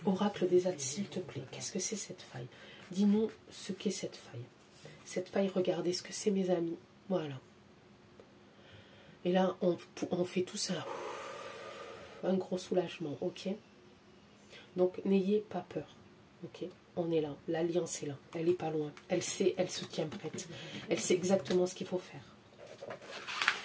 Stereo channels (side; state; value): both; identical; correlation 1.00